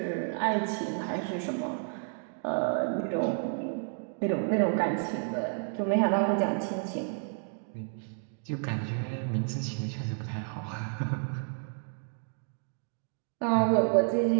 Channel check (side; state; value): left; silent; 57 dB below the other